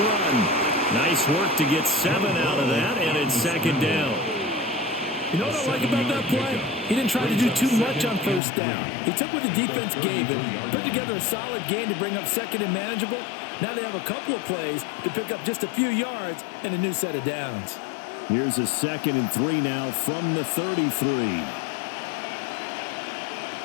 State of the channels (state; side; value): drops out; right; at 8.4 s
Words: Nice work to get 7 out of that, and it's 2nd down. You know what I like about that play? He didn't try to do too much on 1st down. He took what the defense gave him, put together a solid game to bring up 2nd and manageable. Now they have a couple of plays to pick up just a few yards and a new set of downs. Here's a 2nd and 3 now from the 33.